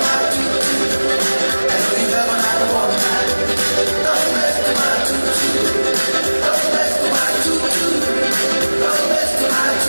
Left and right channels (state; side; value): inverted; both; correlation -1.00